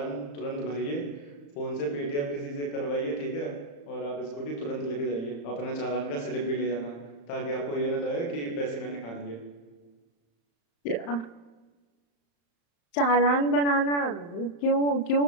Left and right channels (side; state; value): right; late; 35 ms